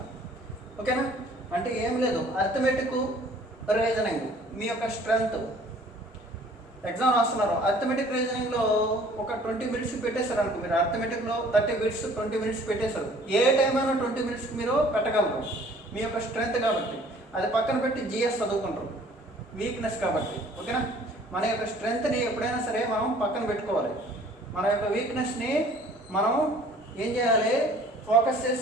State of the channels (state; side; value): normal; both; correlation 0.54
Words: ఓకేనా, అంటే ఏం లేదు, అర్థమెటిక్ రీజనింగ్ మీ యొక్క స్ట్రెంగ్త్. ఎగ్జామ్ రాస్తున్నారు, అర్థమెటిక్ రీజనింగ్లో ఒక 20 మినిట్స్ పెట్టేశారు అనుకో, మీరు అర్థమెటిక్లో 30 మినిట్స్ 20 మినిట్స్ పెట్టేశారు. ఏ టైం అయినా 20 మినిట్స్కి మీరు పెట్టగలరు, మీ యొక్క స్ట్రెంగ్త్ కాబట్టి. అది పక్కన పెట్టి జిఎస్ చదువుకుంటారు, వీక్నెస్ కాబట్టి. ఓకేనా, మన యొక్క స్ట్రెంగ్త్ని ఎప్పుడైనా సరే మనం పక్కన పెట్టుకోవాలి. మన యొక్క వీక్నెస్ని మనం ఏం చేయాలి, ఫోకస్ చేసి